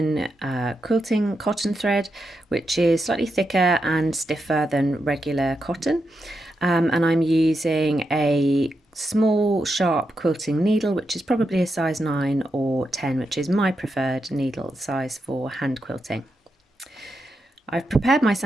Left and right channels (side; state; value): both; normal; correlation 0.85